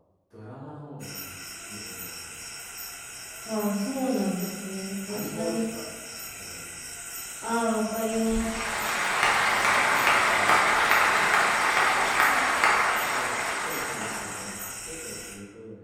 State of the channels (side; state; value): both; identical; correlation 1.00